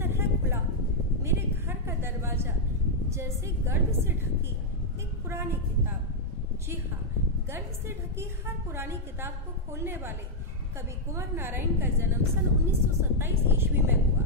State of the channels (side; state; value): both; normal; correlation -0.03